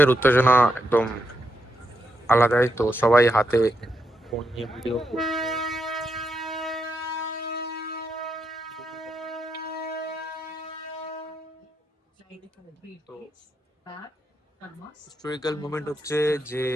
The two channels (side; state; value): both; normal; correlation 0.82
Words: উত্তেজনা একদম আলাদাই, তো সবাই হাতে ফোন নিয়ে ভিডিও তো Back, Thomas. হিস্টোরিক্যাল মোমেন্ট হচ্ছে যে